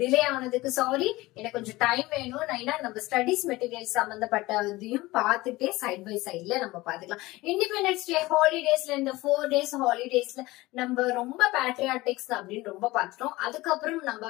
ஆனதுக்கு சாரி, எனக்கு கொஞ்சம் டைம் வேணும். நான் நம்ம ஸ்டடிஸ் மெட்டீரியல் சம்பந்தப்பட்டதையும் பார்த்துட்டே சைட் பை சைட்ல நம்ம பாத்துக்கலாம். இண்டிபெண்டன்ஸ் டே ஹாலிடேஸ்ல இந்த 4 days ஹாலிடேஸ்ல நம்ம ரொம்ப பேட்ரியாட்டிக்ஸ் அப்படின்னு ரொம்ப பார்த்துட்டோம். அதுக்கப்புறம் நம்ம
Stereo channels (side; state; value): right; quieter; 19.8 dB